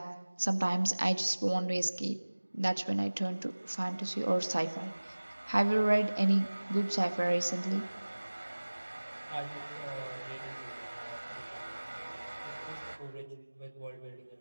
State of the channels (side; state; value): both; inverted; correlation -1.00